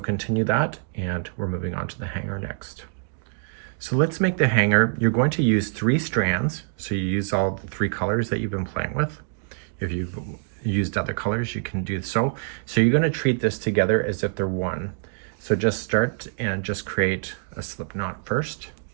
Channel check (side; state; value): left; silent; digital silence